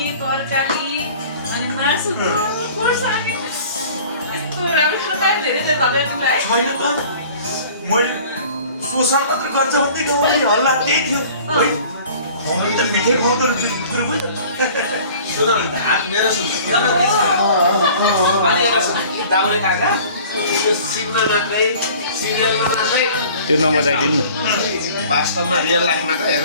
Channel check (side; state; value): both; inverted; correlation -0.47